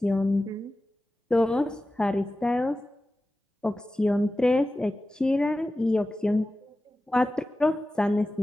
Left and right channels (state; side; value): normal; both; correlation 0.95